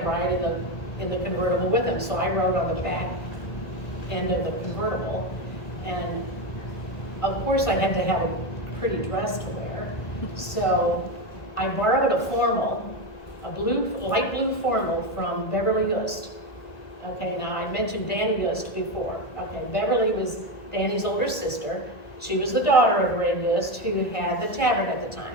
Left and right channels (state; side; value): late; right; 1.5 ms